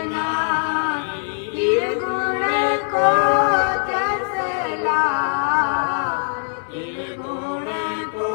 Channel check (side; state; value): right; silent; 65 dB below the other